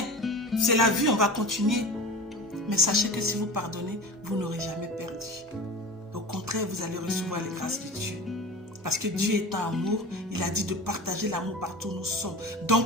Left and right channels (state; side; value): normal; both; correlation 0.33